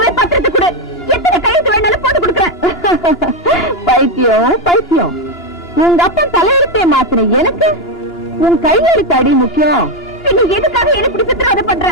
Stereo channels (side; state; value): both; normal; correlation 0.07